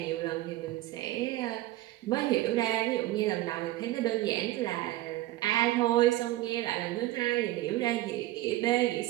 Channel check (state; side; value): quieter; left; 16.4 dB